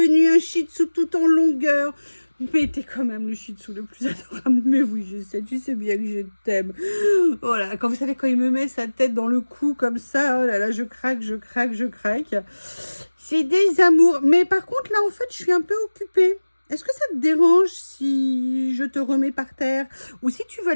un Shih Tzu tout en longueur. Mais t'es quand même le Shih Tzu le plus adorable. Mais oui, je sais, tu sais bien que je t'aime. Voilà, quand vous savez, quand il me met sa tête dans le cou comme ça, oh là là, je craque, je craque, je craque. C'est des amours. Mais par contre, là, en fait, je suis un peu occupée. Est-ce que ça te dérange si je te remets par terre? Ou si tu vas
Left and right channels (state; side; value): inverted; both; correlation -1.00